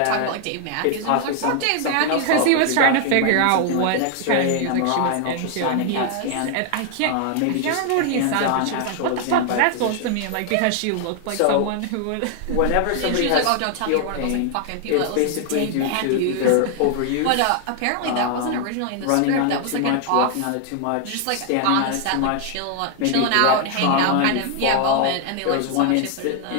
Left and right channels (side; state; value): both; different; correlation 0.00